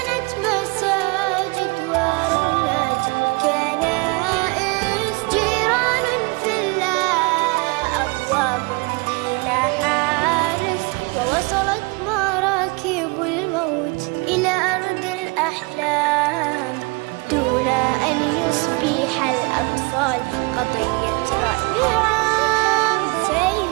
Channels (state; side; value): quieter; left; 29.2 dB